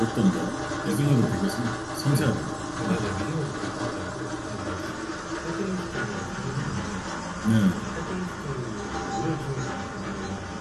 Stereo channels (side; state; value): both; identical; correlation 1.00